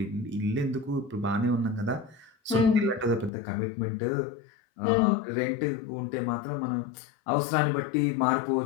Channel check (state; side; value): drops out; right; at 3.3 s